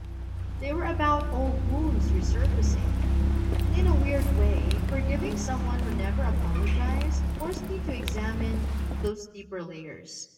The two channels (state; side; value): identical; both; correlation 1.00